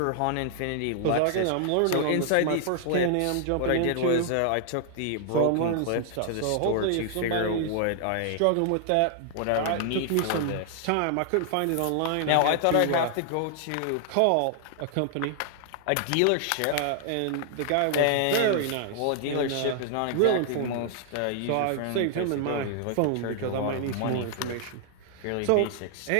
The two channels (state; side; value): different; both; correlation 0.00